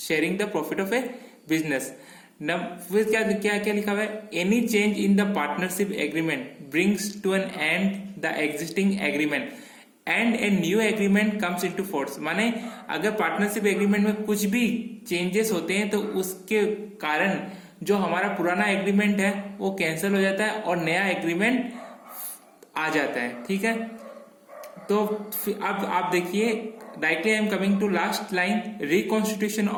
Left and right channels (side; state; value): both; identical; correlation 1.00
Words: the profit of a business. फिर क्या क्या क्या लिखा हुआ है, any change in the partnership agreement brings to an end the existing agreement and a new agreement comes into force. माने अगर पार्टनरशिप एग्रीमेंट में कुछ भी चेंजेस होते हैं तो उसके कारण जो हमारा पुराना एग्रीमेंट है वो कैंसिल हो जाता है और नया एग्रीमेंट आ जाता है, ठीक है। तो अब आप देखिए, directly I am coming to last line, reconstitution